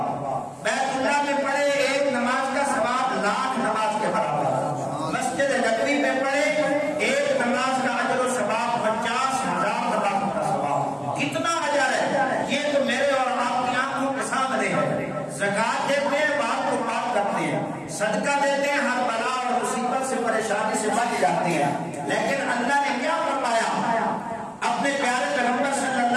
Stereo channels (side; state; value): both; identical; correlation 1.00